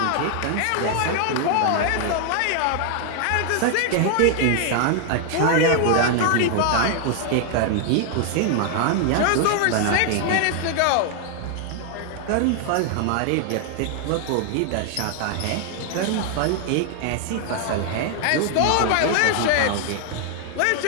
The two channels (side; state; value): both; different; correlation 0.00